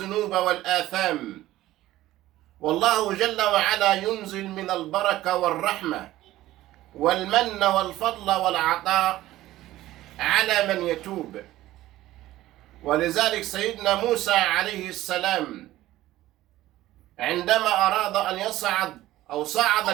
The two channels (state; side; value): quieter; left; 15.5 dB